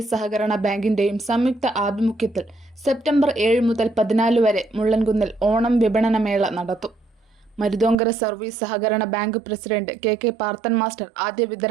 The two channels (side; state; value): left; drops out; at 8.0 s